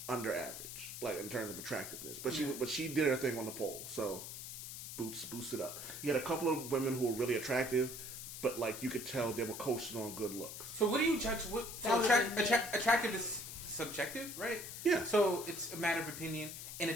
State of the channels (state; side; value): noise; left; hiss, 9 dB below the sound